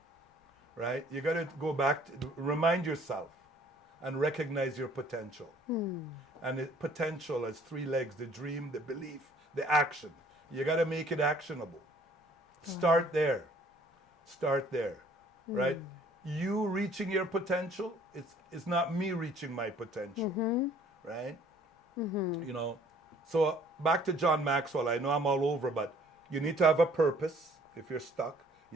right? You got to go back to remind yourself and recognize your potential. And potential has three legs: the dream, the belief, the action. You got to make it actionable. Start there. Start there, right? You reaching your potential, it's not me reaching my potential, right? You know, so back to John Maxwell. I know I'm all over, but you need to have a purpose. If you're stuck, you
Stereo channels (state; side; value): normal; both; correlation 0.57